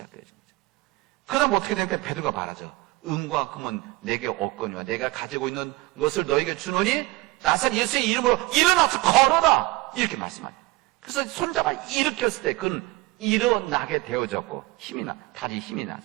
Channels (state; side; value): quieter; left; 21.3 dB